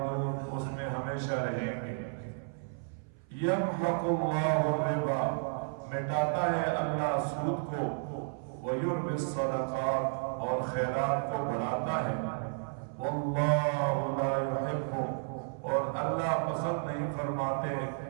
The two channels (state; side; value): silent; left; 56 dB below the other